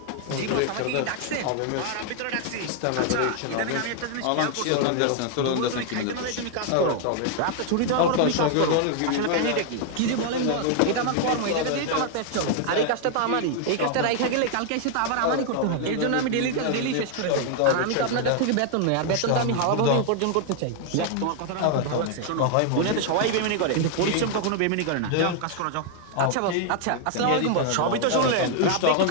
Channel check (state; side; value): different; both; correlation 0.00